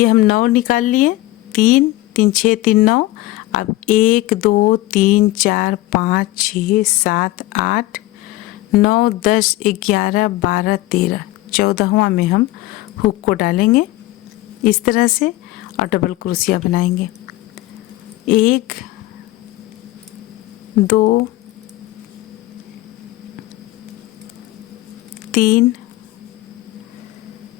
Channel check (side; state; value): right; quieter; 17.4 dB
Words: हम 9 निकाल लिए, 3 3 6 3 9। अब 1 2 3 4 5 6 7 8 9 10 11 12 13, 14वां में हम हुक को डालेंगे इस तरह से और डबल क्रोशिया बनाएंगे। 1 2 3